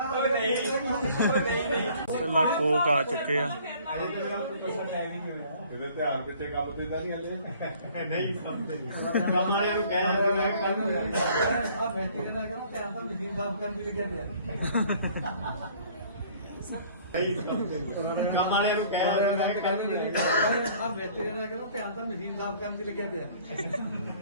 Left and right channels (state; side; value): inverted; both; correlation -0.55